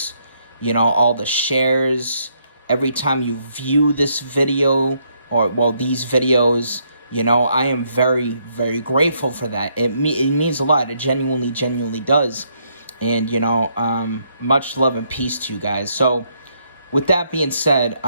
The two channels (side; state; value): both; inverted; correlation -0.73